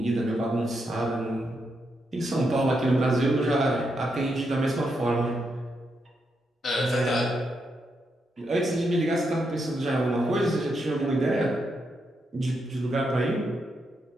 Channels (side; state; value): both; normal; correlation 0.82